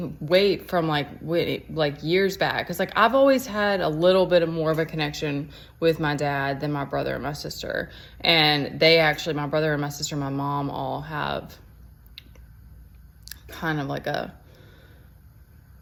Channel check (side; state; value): both; identical; correlation 1.00